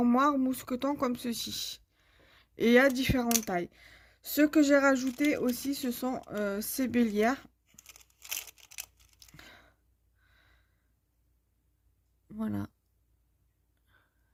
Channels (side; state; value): both; identical; correlation 1.00